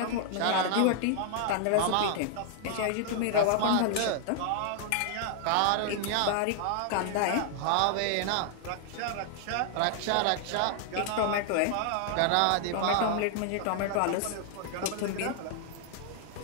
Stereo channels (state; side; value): different; both; correlation -0.01